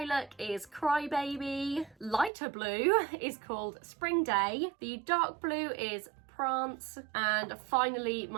is Crybaby. Lighter blue is called Spring Day. The dark blue is Prance. And finally,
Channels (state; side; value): drops out; left; at 2.3 s